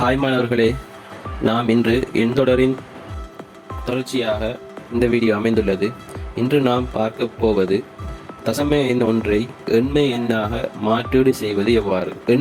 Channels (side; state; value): both; identical; correlation 1.00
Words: Hi மாணவர்களே, நாம் இன்று எண்தொடரின் தொடர்ச்சியாக இந்த வீடியோ அமைந்துள்ளது. இன்று நாம் பார்க்க போவது தசம எண் ஒன்றை எண்மை எண்ணாக மாற்றீடு செய்வது எவ்வாறு.